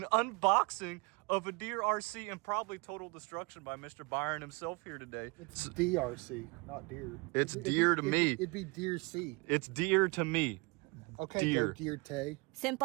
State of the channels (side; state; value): left; quieter; 28.6 dB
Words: unboxing of a DEERC and probably total destruction by Mr. Byron himself here today. It's DRC, not deer. It's deer to me. It'd be deer C. It's deer to me. Okay, deer. Deer Tay.